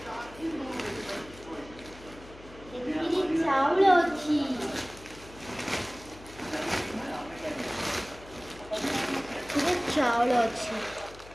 चाउल अच्छी चाउल अच्छी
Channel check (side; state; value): left; noise; hum, 19 dB below the sound